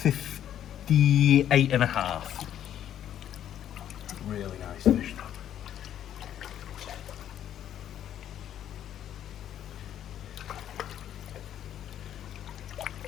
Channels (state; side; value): quieter; right; 10.6 dB